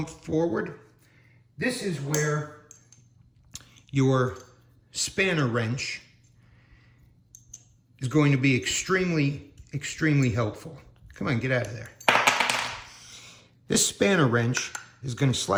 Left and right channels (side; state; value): both; identical; correlation 1.00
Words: forward. This is where your spanner wrench is going to be extremely, extremely helpful. Come on, get out of there. This spanner wrench is going to